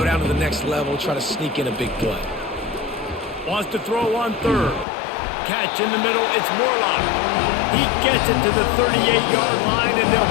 down to the next level, try to sneak in a big play. Wants to throw on 3rd. Catch in the middle, it's Morlock. He gets it to the 38-yard line, and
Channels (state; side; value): drops out; right; at 4.9 s